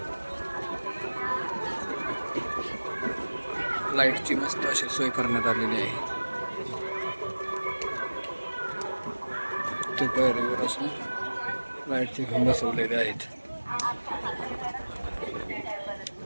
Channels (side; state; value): both; inverted; correlation -1.00